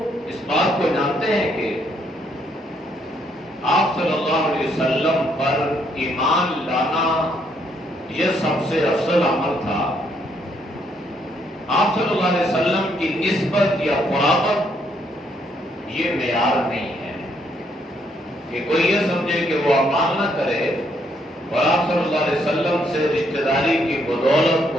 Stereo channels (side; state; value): both; normal; correlation 0.72